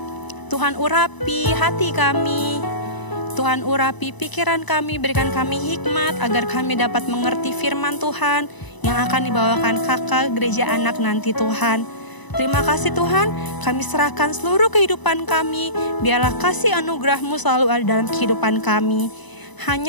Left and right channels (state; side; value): late; right; 1.0 ms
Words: Tuhan urapi hati kami. Tuhan urapi pikiran kami, berikan kami hikmat agar kami dapat mengerti firman Tuhan yang akan dibawakan kakak gereja anak nanti Tuhan. Terima kasih Tuhan, kami serahkan seluruh kehidupan kami, biarlah kasih anugerah-Mu selalu ada dalam kehidupan kami.